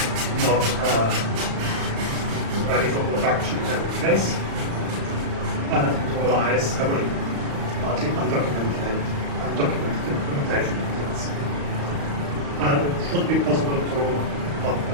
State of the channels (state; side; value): late; left; 35 ms